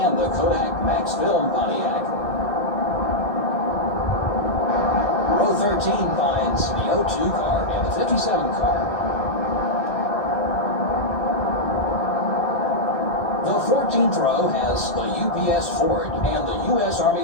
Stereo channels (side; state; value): right; late; 2.0 ms